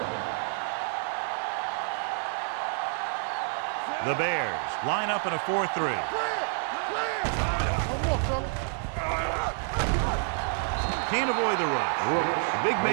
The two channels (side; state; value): left; silent; 59 dB below the other